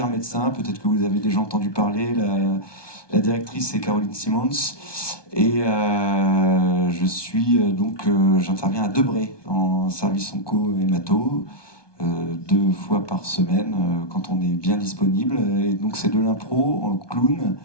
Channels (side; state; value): right; late; 1.2 ms